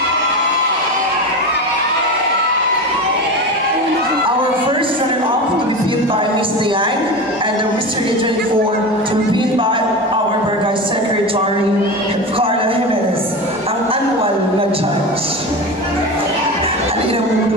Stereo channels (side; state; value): both; normal; correlation 0.25